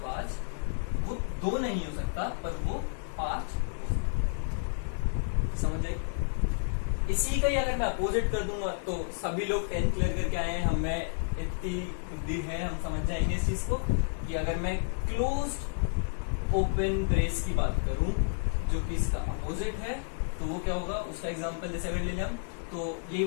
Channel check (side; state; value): right; silent; 57 dB below the other